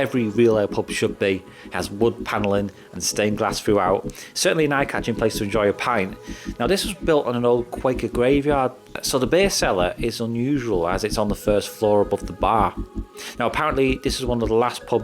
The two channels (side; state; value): both; identical; correlation 1.00